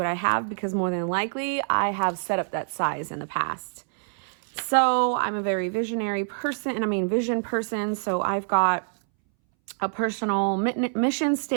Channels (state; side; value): silent; left; 61 dB below the other